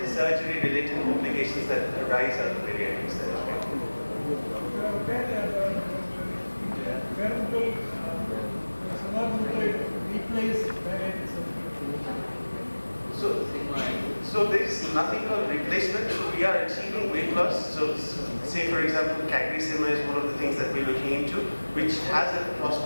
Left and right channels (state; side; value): inverted; both; correlation -1.00